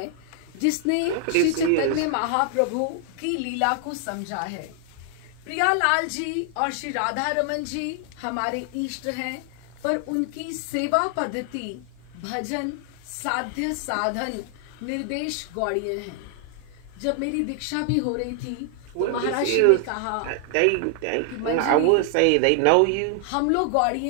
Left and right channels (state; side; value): different; both; correlation 0.00